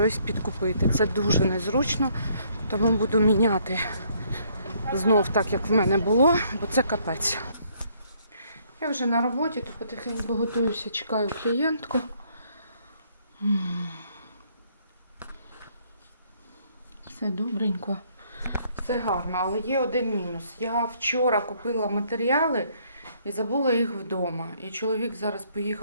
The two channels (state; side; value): inverted; both; correlation -0.66